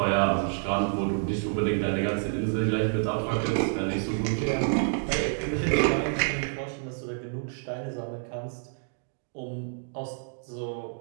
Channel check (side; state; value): left; silent; digital silence